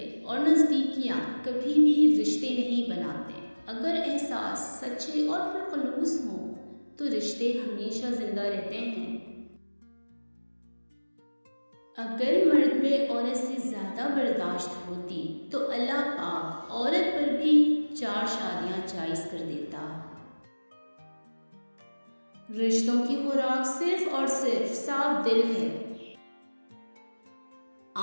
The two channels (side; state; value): both; inverted; correlation -1.00